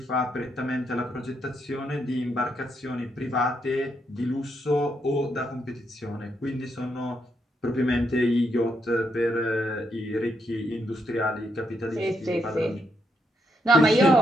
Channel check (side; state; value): both; normal; correlation 0.79